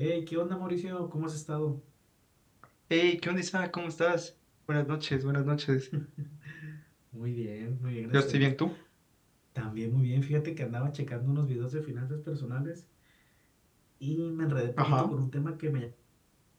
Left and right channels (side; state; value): both; identical; correlation 1.00